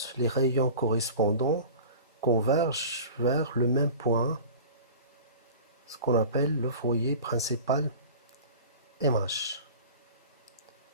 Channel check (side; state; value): both; inverted; correlation -0.38